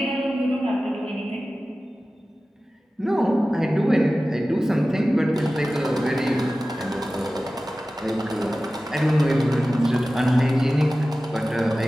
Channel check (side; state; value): both; normal; correlation 0.96